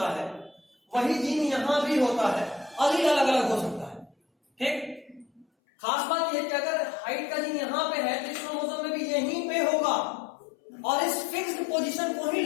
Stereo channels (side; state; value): right; drops out; at 5.5 s